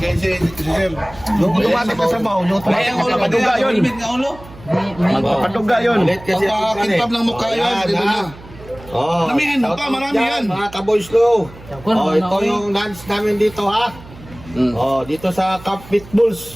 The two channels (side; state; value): right; noise; hum, 19 dB below the sound